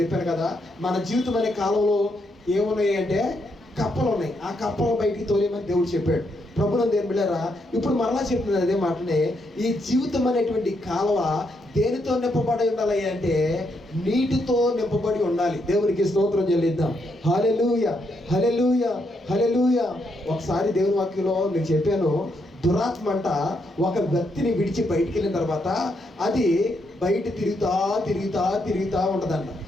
కదా, మన జీవితం అనే కాలంలో ఏమున్నాయి అంటే కప్పలు ఉన్నాయి. ఆ కప్పలు బయటికి తోలేమని దేవుడు చెప్పాడు. ప్రభునందు బిడ్డలారా ఇప్పుడు మరలా చెప్తున్నది అదే మాటనే. ఈ జీవితం అనేటువంటి కాలువ దేనితో నింపబడి ఉండాలి అంటే నీటితో నింపబడి ఉండాలి. దేవునికి స్తోత్రం చెల్లిద్దాం. హల్లెలూయా, హల్లెలూయా, హల్లెలూయా. ఒకసారి దేవుని వాక్యంలో నేను చెప్పాను, దురాత్మ అంట ఒక వ్యక్తిని విడిచి బయటికి వెళ్ళిన తర్వాత అది బయట తిరుగుతా ఉంటుందంట.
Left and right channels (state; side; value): normal; both; correlation 0.78